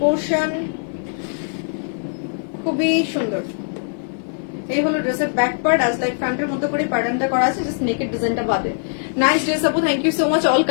খুবই সুন্দর। এই হলো ড্রেসের ব্যাক পার্ট, আজ লাইক ফ্রন্টের মতো করে প্যাটার্নটা করা আছে, জাস্ট নেকের ডিজাইনটা বাদে। নাইস ড্রেস আপু, thank you so much. All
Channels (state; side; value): silent; right; 55 dB below the other